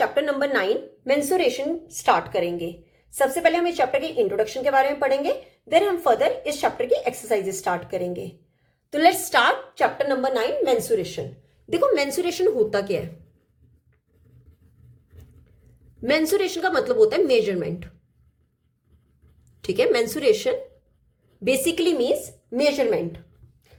number 9 mensuration start करेंगे। सबसे पहले हम इस चैप्टर के इंट्रोडक्शन के बारे में पढ़ेंगे, देन हम फर्दर इस चैप्टर की एक्सरसाइजेस स्टार्ट करेंगे। तो let's start chapter number 9 mensuration. देखो मेंसुरेशन होता क्या है। मेंसुरेशन का मतलब होता है मेजरमेंट। ठीक है, मेंसुरेशन बेसिकली मीन्स मेजरमेंट।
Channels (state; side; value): identical; both; correlation 1.00